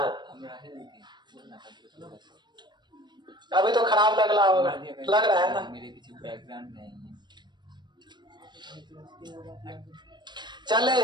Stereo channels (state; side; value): late; left; 0.22 ms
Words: अभी तो खराब लग रहा होगा, लग रहा है ना, मेरे पीछे बैकग्राउंड नहीं है। चले